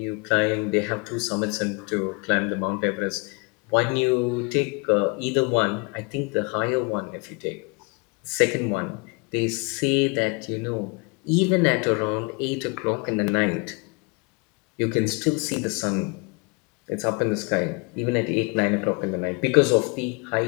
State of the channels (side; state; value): right; quieter; 31.0 dB